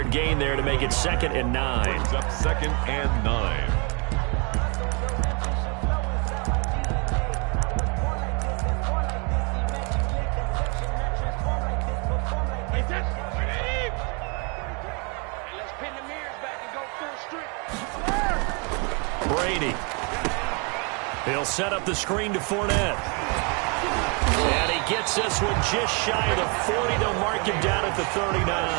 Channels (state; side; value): quieter; left; 34.1 dB